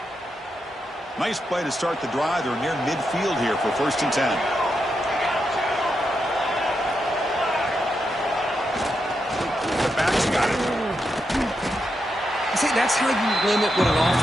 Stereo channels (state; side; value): normal; both; correlation 0.84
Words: Nice play to start the drive. They're near midfield here for 1st and 10. The back's got it. See, that's how you limit what an